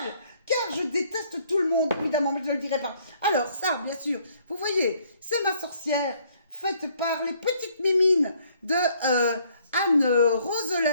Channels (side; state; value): both; inverted; correlation -0.64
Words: Car je déteste tout le monde, évidemment, mais je ne le dirai pas. Alors, ça, bien sûr, vous voyez, c'est ma sorcière, faite par les petites mimines de Anne